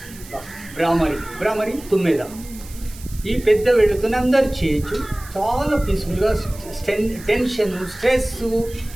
భ్రామరి తుమ్మెద. ఈ పెద్ద వెళుతుని అందరు చేయొచ్చు. చాలా పీస్ఫుల్గా, టెన్షన్ స్ట్రెస్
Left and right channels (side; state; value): right; noise; hiss, 18 dB below the sound